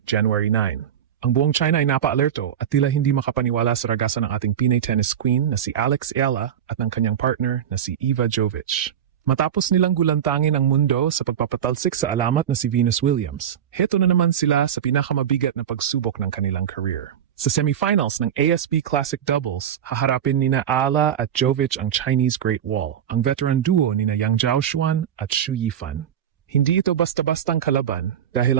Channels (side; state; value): left; quieter; 9.3 dB